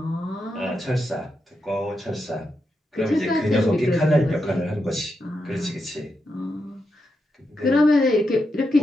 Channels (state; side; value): normal; both; correlation 0.85